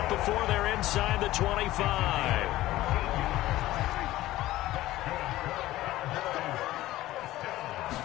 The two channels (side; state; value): right; quieter; 16.1 dB